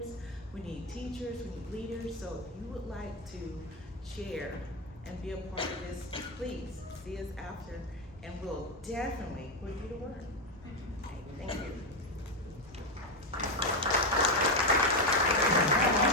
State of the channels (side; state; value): both; normal; correlation 0.09